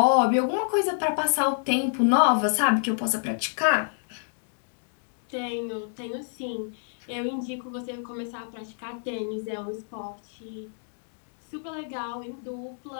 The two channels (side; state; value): right; silent; digital silence